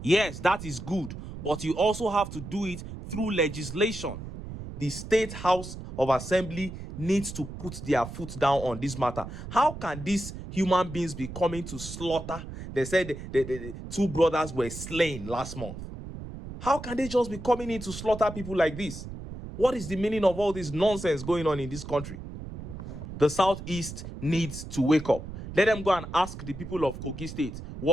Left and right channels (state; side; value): noise; right; rumble, 10 dB below the sound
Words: Yes, that is good. But you also have to do it through legislation. The State House of Assembly needs to put their foot down on this matter. How can these human beings be coming to slaughter? They said the two brothers were slain last month. How can they just be coming in to slaughter people like this? What is the meaning of all this nonsense going on in this country? The Southeast needs to wake up. Let them go and ask the people of Kogi State